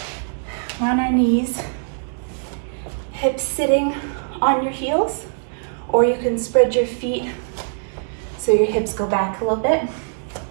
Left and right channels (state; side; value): silent; left; digital silence